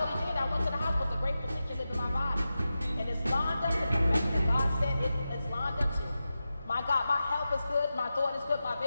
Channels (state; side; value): inverted; both; correlation -0.92